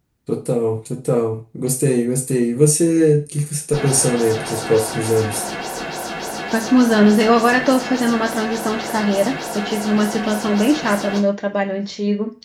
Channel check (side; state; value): both; identical; correlation 1.00